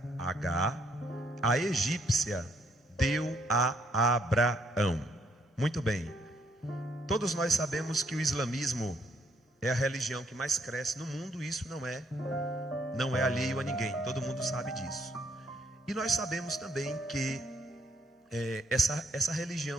Agar, a egípcia, deu a Abraão. Muito bem. Todos nós sabemos que o islamismo é a religião que mais cresce no mundo. Isso não é alheio a ninguém. Todo mundo sabe disso. E nós sabemos também que essa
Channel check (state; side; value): normal; both; correlation 0.70